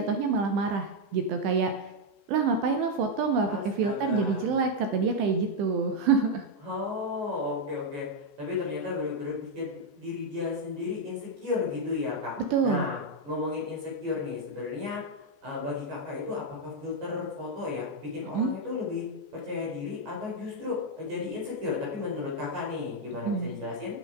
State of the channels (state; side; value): late; left; 14 ms